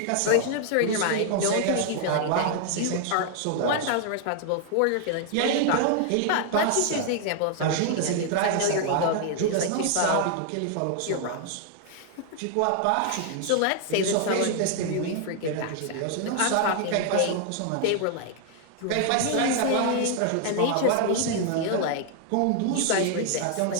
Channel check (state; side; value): different; both; correlation 0.00